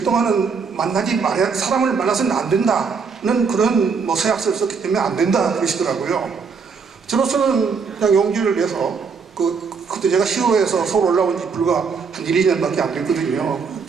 동안은 사람을 만나서는 안 된다는 그런 뭐 서약서를 썼기 때문에 안 된다 그러시더라고요. 저로서는 그냥 용기를 내서 그때 제가 시로에서 서울 올라온 지 불과 한 1, 2년밖에 안 됐거든요.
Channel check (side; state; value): left; quieter; 5.5 dB